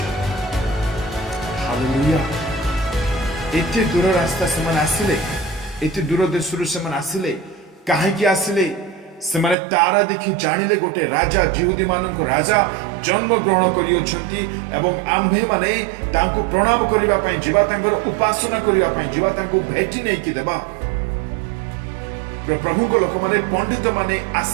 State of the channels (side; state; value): left; drops out; at 9.6 s